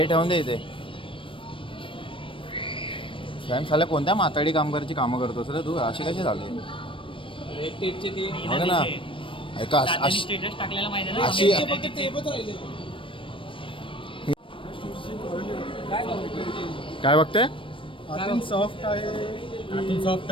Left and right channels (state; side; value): late; right; 0.25 ms